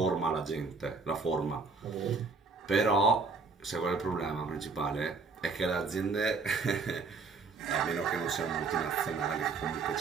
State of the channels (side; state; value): left; quieter; 4.4 dB